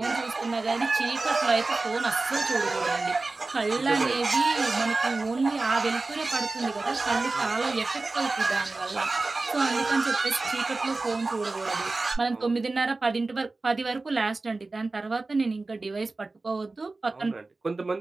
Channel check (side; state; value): left; quieter; 3.5 dB